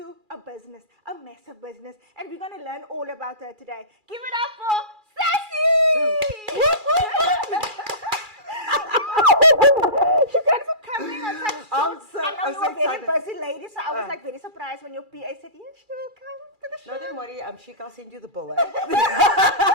a business, a massive business. And we're going to learn all about her today. Give it up for Sassy! Thanks for coming on such I'm so a very excited. busy lady, so I was like very surprised when your PA said, yes, she will come to the show. No, don't worry. Sheik, I'll send you the bill.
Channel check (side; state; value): left; late; 2.4 ms